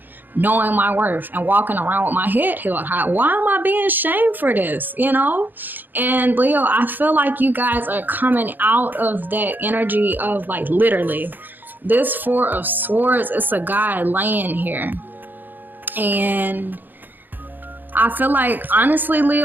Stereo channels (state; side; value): late; left; 0.089 ms